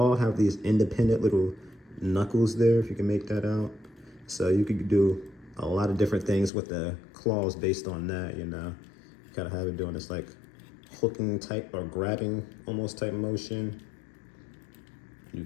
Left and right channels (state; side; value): drops out; right; at 6.5 s